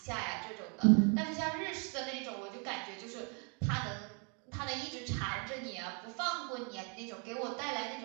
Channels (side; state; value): left; quieter; 36.7 dB